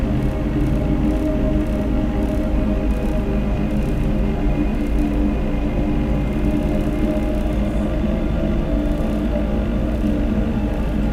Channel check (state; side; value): identical; both; correlation 1.00